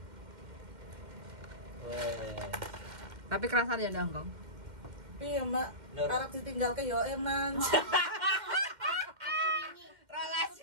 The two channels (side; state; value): left; late; 2.1 ms